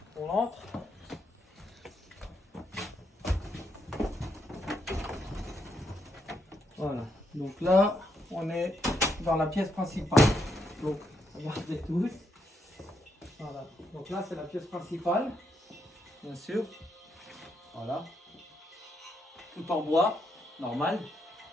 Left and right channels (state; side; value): normal; both; correlation 0.78